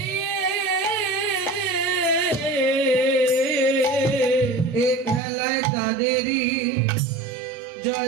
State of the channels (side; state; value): left; drops out; at 5.2 s